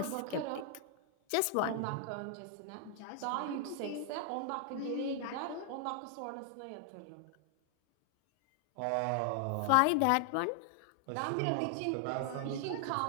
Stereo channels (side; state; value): both; different; correlation 0.00